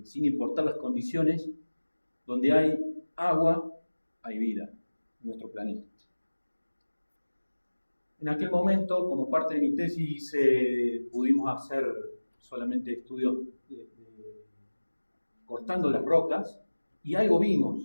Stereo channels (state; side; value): inverted; both; correlation -1.00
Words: sin importar las condiciones, donde hay agua, hay vida en nuestro planeta. En aquel momento, como parte de mi tesis, pudimos hacer solamente estudios cortando las rocas, y algo